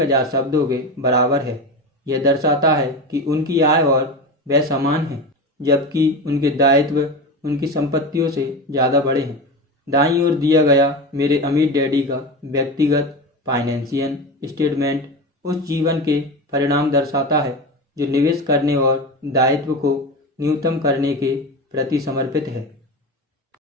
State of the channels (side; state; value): both; normal; correlation 0.24